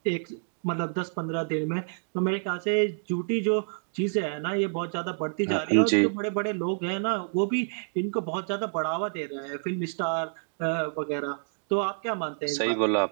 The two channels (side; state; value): left; silent; digital silence